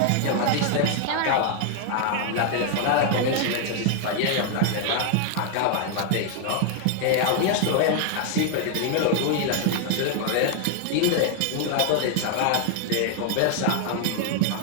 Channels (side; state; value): both; different; correlation 0.00